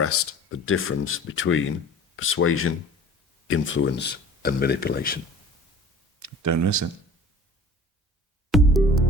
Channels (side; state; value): both; normal; correlation 0.44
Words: the difference between persuasion, influence, and manipulation. Don't miss it.